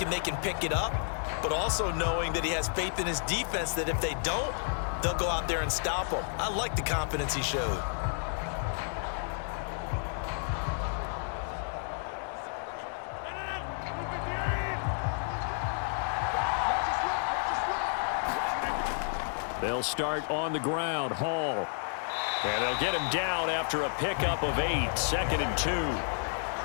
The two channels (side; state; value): right; silent; 57 dB below the other